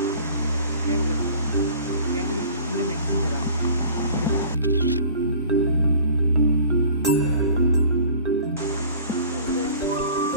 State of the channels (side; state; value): both; inverted; correlation -0.46